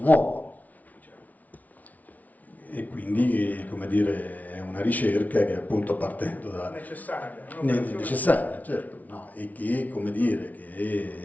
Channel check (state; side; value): late; right; 0.074 ms